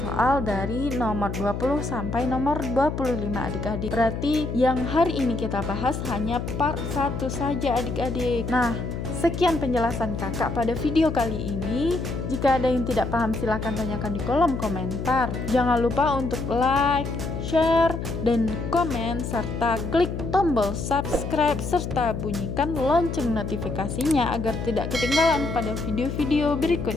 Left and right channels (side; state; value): left; noise; hum, 5 dB below the sound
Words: soal dari nomor 20 sampai nomor 25 adik-adik. Berarti yang hari ini kita bahas hanya part 1 saja adik-adik. Nah, sekian penjelasan kakak pada video kali ini. Jika ada yang tidak paham silahkan tanyakan di kolom komentar. Jangan lupa untuk like, share, dan komen, serta klik tombol subscribe serta bunyikan lonceng notifikasinya agar tidak ketinggalan pada video-video